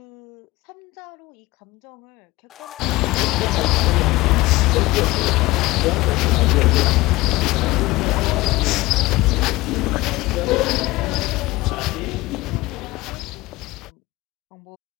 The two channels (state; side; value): quieter; right; 19.8 dB